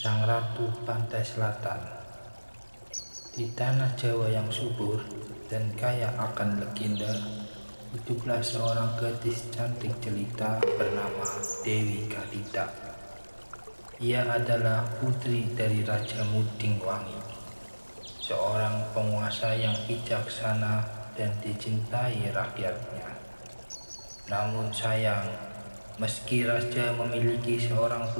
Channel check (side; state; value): both; inverted; correlation -1.00